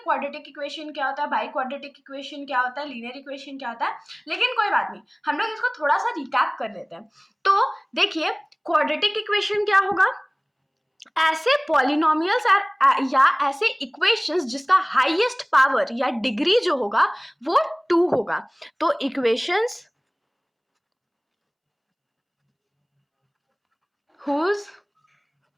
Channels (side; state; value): both; identical; correlation 1.00